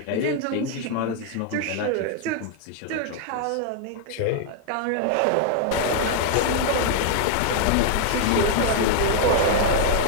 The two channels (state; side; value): different; both; correlation 0.00